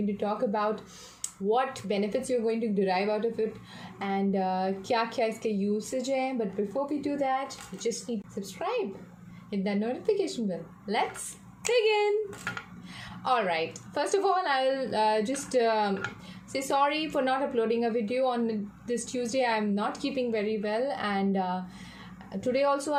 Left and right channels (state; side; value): identical; both; correlation 1.00